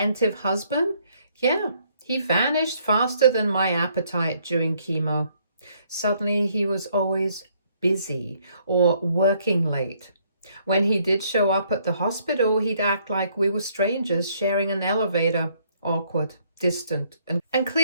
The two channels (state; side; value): inverted; both; correlation -0.68